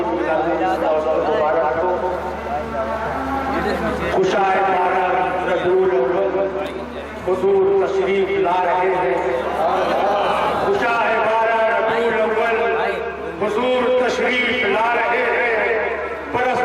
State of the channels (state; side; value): identical; both; correlation 1.00